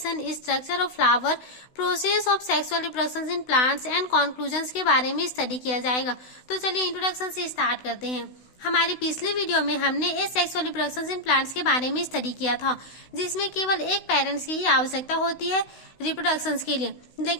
structure of flower, process of sexual reproduction in plants and conclusions के बारे में स्टडी किया जाएगा। तो चलिए इंट्रोडक्शन से स्टार्ट करते हैं। हमारी पिछली वीडियो में हमने एसेक्सुअल रिप्रोडक्शन इन प्लांट्स के बारे में स्टडी किया था, जिसमें केवल एक पेरेंट्स की ही आवश्यकता होती है रिप्रोडक्शन के लिए।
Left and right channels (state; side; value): late; right; 16 ms